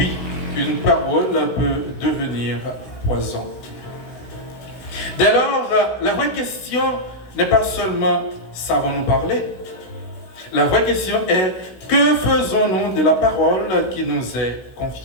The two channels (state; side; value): late; right; 16 ms